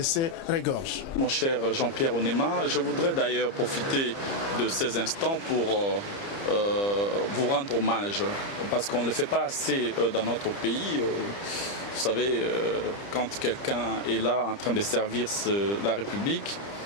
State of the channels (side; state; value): right; late; 30 ms